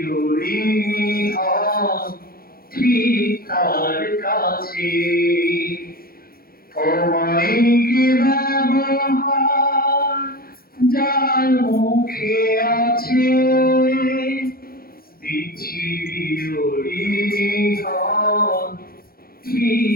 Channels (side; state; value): right; late; 0.43 ms